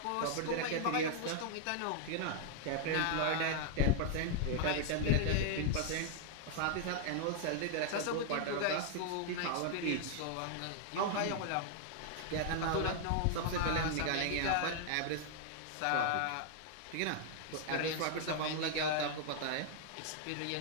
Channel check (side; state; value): both; different; correlation -0.01